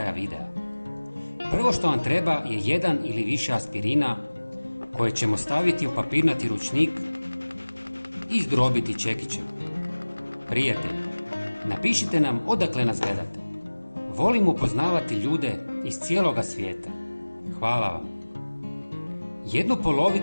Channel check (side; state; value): both; inverted; correlation -1.00